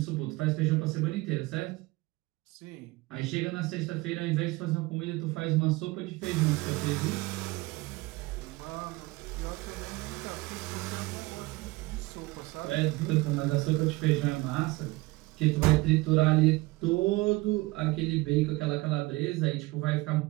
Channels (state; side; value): quieter; left; 21.8 dB